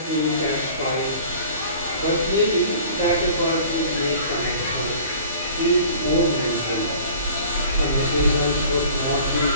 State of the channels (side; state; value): both; inverted; correlation -0.46